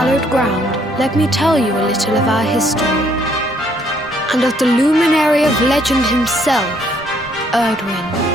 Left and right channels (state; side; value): normal; both; correlation 0.67